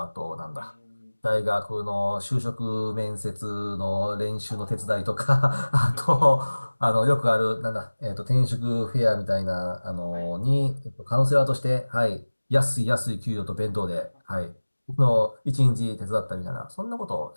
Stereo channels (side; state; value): both; inverted; correlation -1.00